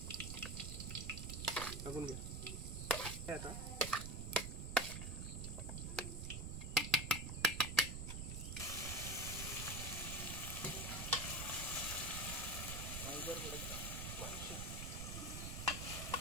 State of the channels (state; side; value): noise; right; rumble, 4 dB below the sound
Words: टाकून घ्या आता.